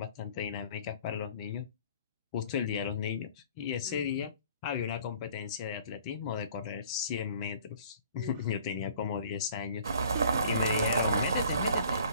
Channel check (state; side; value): inverted; both; correlation -0.52